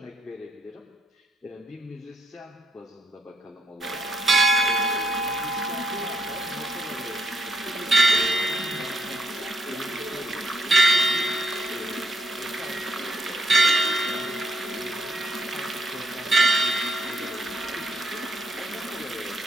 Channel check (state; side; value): normal; both; correlation 0.78